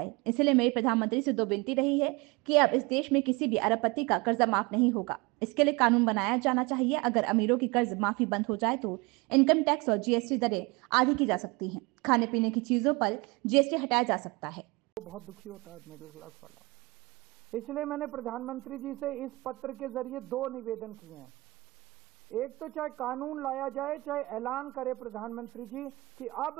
इसलिए मेरी प्रधानमंत्री से दो विनती रही है कि अब इस देश में किसी भी अरबपति का कर्जा माफ नहीं होगा। इसके लिए कानून बनाया जाना चाहिए। अगर अमीरों की कर्ज माफी बंद हो जाए तो इनकम टैक्स और जीएसटी दरें आधी की जा सकती हैं। खाने पीने की चीजों पर जीएसटी हटाया जा सकता है। बहुत दुखी होता है मिडिल क्लास वाला। इसलिए मैंने प्रधानमंत्री जी से इस पत्र के जरिए दो निवेदन किए हैं। एक तो चाहे कानून लाया जाए, चाहे ऐलान करे प्रधानमंत्री जी कि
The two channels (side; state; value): left; quieter; 24.0 dB